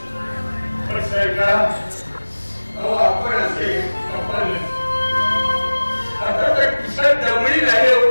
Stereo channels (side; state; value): both; inverted; correlation -1.00